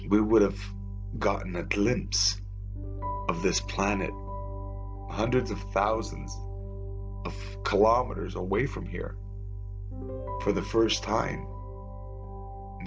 We would have gotten a glimpse of this planet hundreds of thousands of kilometers away from here for the first time,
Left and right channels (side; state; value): both; identical; correlation 1.00